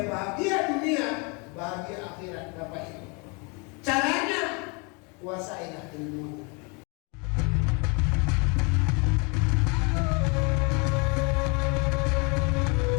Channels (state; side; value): quieter; right; 32.1 dB